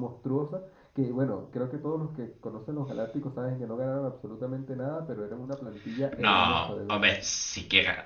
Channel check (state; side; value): identical; both; correlation 1.00